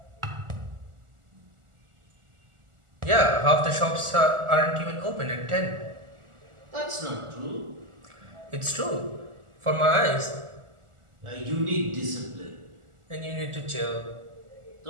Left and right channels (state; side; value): late; left; 1.4 ms